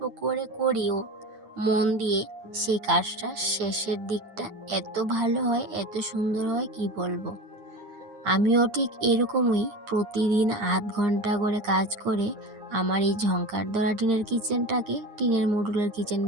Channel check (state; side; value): late; left; 9.8 ms